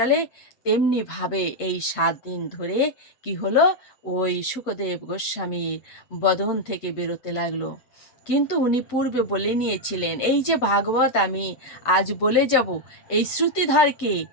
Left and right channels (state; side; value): late; right; 7.9 ms